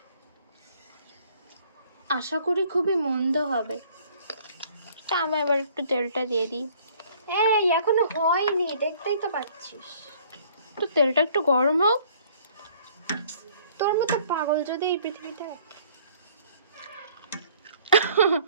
আশা করি খুবই মন্দ হবে। তা আমি এবার একটু তেলটা দিয়ে দিই। এই এখনো হয়নি, দেখতেই তো পাচ্ছিস। তো তেলটা একটু গরম হোক। তোর মতো পাগল যদি এই পৃথিবীতে থাকে।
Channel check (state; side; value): inverted; both; correlation -0.57